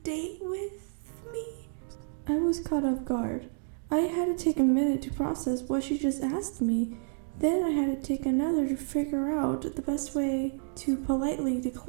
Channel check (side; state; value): left; silent; 58 dB below the other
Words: date with me? I was caught off guard. I had to take a minute to process what she just asked me. Then I had to take another to figure out the best way to politely